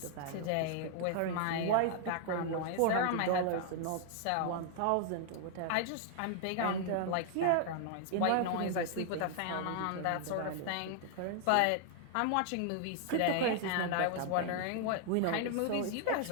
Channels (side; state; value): both; different; correlation 0.00